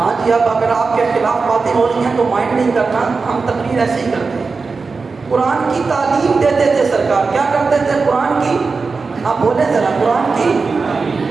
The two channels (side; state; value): left; quieter; 4.4 dB